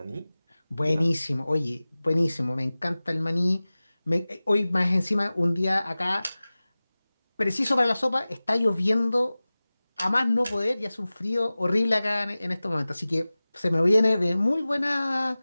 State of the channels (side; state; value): both; inverted; correlation -0.98